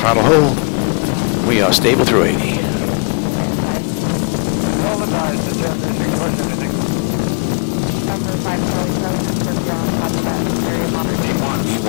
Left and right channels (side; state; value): right; quieter; 34.7 dB